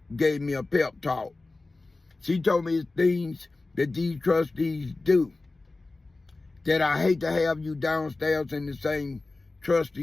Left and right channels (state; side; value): quieter; right; 3.3 dB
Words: gave me a pep talk. She told me it's things that these trustees do that I hate to have you downstairs in the same